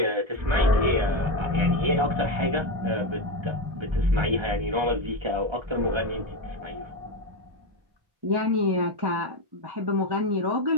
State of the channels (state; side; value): late; left; 1.3 ms